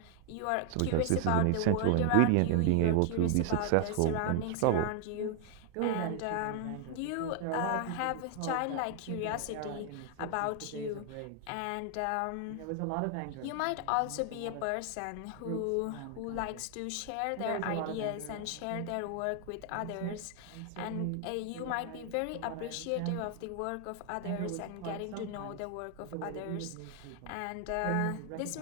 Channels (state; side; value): different; both; correlation 0.00